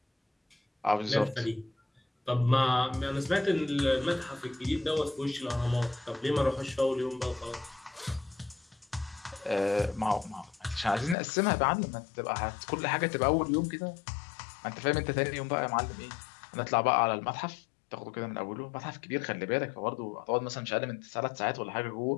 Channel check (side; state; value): right; drops out; at 11.2 s